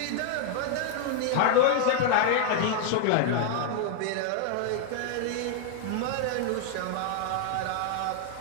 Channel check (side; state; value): both; different; correlation 0.00